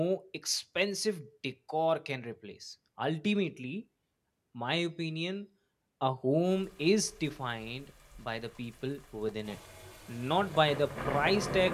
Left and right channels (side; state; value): both; identical; correlation 1.00